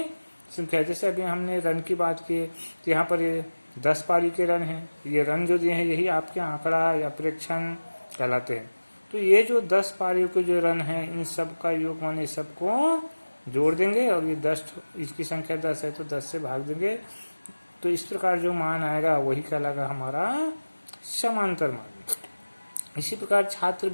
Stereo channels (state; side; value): inverted; both; correlation -1.00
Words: संख्या। जैसे अभी हमने रन की बात की, तो यहाँ पर ये 10 पारी के रन हैं। ये रन जो दिए हैं यही आपके आंकड़ा या प्रेक्षण कहलाते हैं। तो ये जो 10 पारियों के जो रन हैं इन सब का योग माने सबको जोड़ देंगे और ये 10, इसकी संख्या 10 है तो 10 से भाग देंगे। तो इस प्रकार जो मान आएगा वही कहलाएगा हमारा समांतर मान। इसी प्रकार छात्र